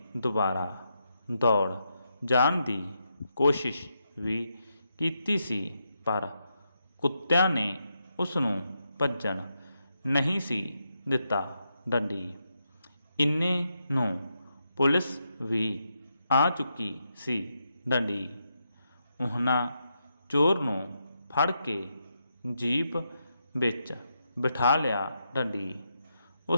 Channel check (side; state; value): both; inverted; correlation -0.83